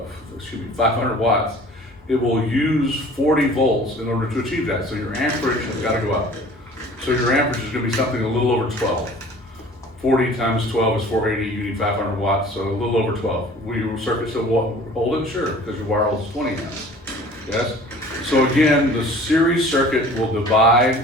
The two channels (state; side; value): normal; both; correlation 0.47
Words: watts, it will use 40 volts in order to achieve that. So your amperage has got to go up. So your amperage is going to be something a little over 12. 40 times 12 is 480, you need 500 watts, so a little over 12. Will your circuit still hold it? Sure, because your wire holds 20 amps. Yes? So again, the series circuit will